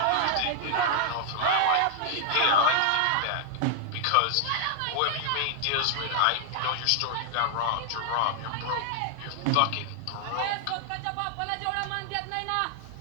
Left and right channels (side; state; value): both; different; correlation -0.01